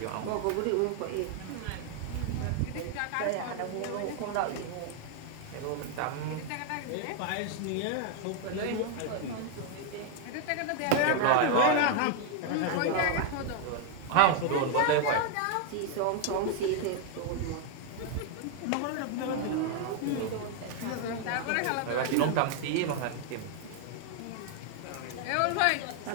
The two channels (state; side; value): different; both; correlation 0.00